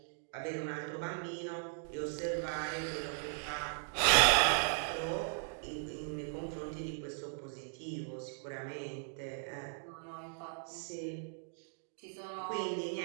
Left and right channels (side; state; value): left; silent; digital silence